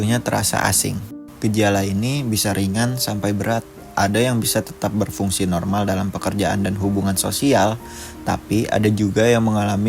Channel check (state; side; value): identical; both; correlation 1.00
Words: terasa asing. Gejala ini bisa ringan sampai berat. Ada yang bisa tetap berfungsi normal dalam pekerjaan dan hubungan sosial, tapi ada juga yang